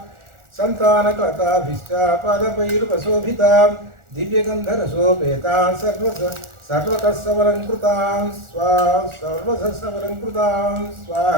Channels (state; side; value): late; left; 1.4 ms